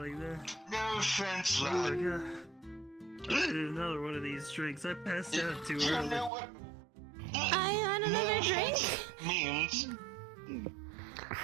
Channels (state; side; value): drops out; left; at 6.3 s